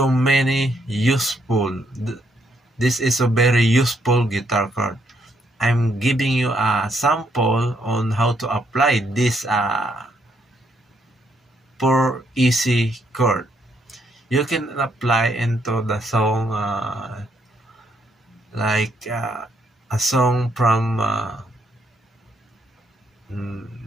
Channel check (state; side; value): normal; both; correlation 0.73